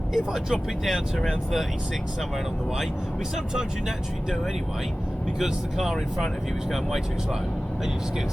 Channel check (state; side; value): normal; both; correlation 0.97